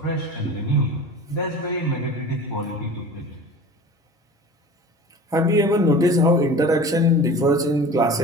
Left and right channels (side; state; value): both; normal; correlation 0.38